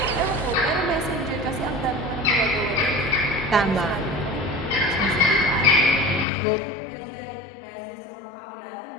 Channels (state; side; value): drops out; right; at 6.2 s